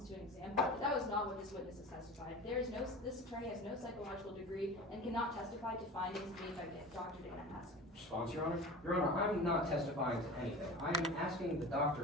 to an exam. That was not what this witness has testified. This attorney has no psychological degree and cannot testify to findings made by Dr. Dana Haskins. Response, Your Honor? Your Honor, I'm not testifying to anything. I am asking the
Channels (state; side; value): normal; both; correlation 0.34